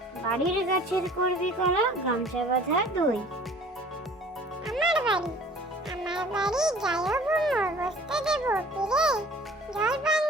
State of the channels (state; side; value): normal; both; correlation 0.49